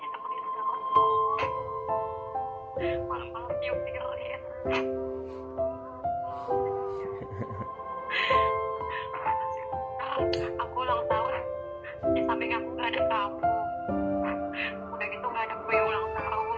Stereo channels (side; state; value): both; identical; correlation 1.00